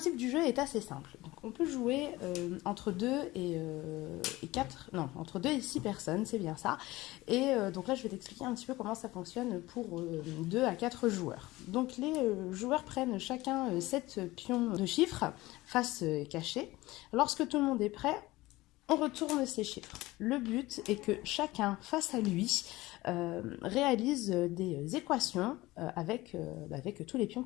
du jeu est assez simple. Donc, on peut jouer entre 2 et 4, non, entre 2 et 6 personnes, c'est bien ça. Et donc là, je vais t'expliquer un petit peu comment ça fonctionne pour 2 à 4 joueurs. Donc les joueurs prennent chacun 7 pions de chiffres, face cachée. Lorsque tout le monde est prêt, on retourne ces chiffres. Le but est que chacun, face à lui, réalise des équations avec tous les pions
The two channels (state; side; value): quieter; right; 19.1 dB